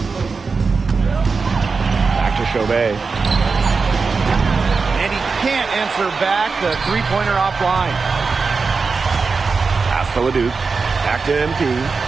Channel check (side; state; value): left; quieter; 4.6 dB